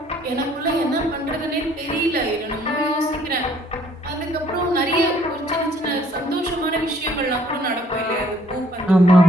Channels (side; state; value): both; normal; correlation 0.62